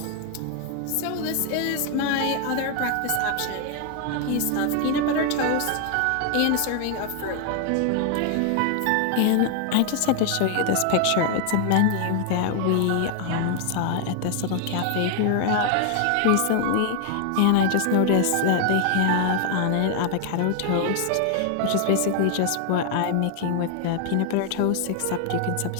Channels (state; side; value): different; both; correlation 0.00